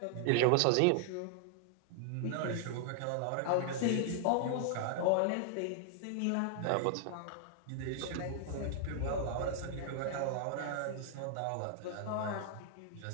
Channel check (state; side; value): different; both; correlation 0.00